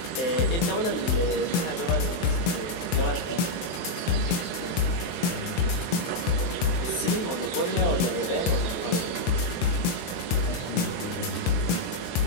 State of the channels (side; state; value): right; late; 23 ms